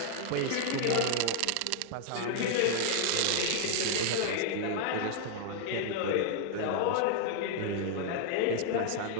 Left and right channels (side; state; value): both; different; correlation 0.00